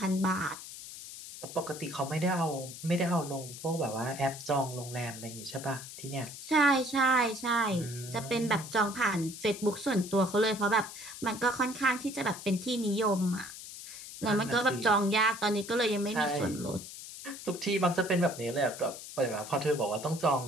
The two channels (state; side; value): noise; left; hiss, 12 dB below the sound